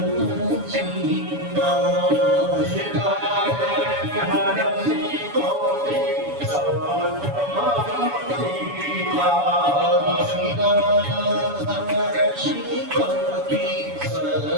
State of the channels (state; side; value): late; left; 7.1 ms